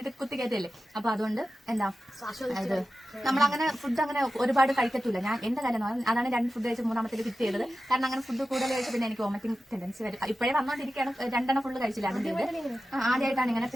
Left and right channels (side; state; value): both; normal; correlation 0.93